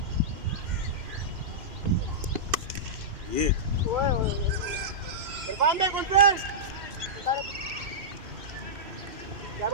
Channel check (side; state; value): left; late; 2.6 ms